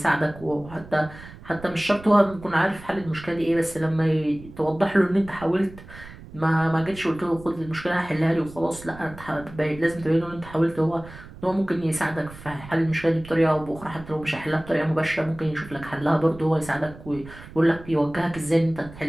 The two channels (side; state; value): right; noise; rumble, 17 dB below the sound